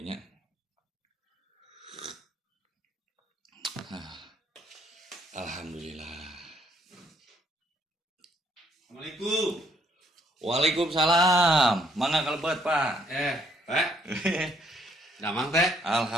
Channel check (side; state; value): both; normal; correlation 0.68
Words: Alhamdulillah. Assalamualaikum. Waalaikumsalam. Mangga kalebet, Pak. Pak. Damang teh.